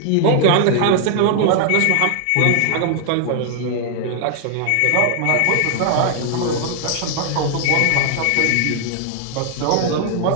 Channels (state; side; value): different; both; correlation 0.00